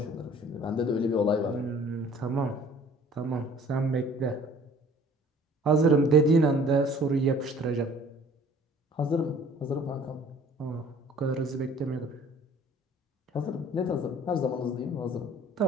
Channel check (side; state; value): both; normal; correlation 0.52